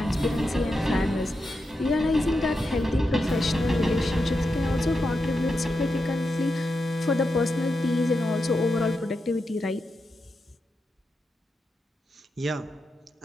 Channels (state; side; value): normal; both; correlation 0.87